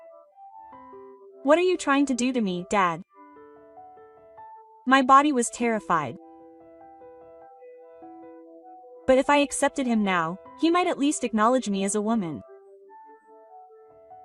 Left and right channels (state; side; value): identical; both; correlation 1.00